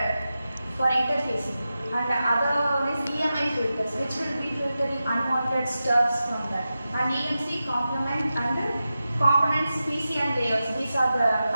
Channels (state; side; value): inverted; both; correlation -0.92